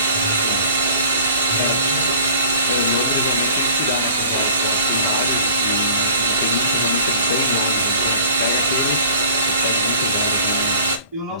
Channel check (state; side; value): inverted; both; correlation -0.48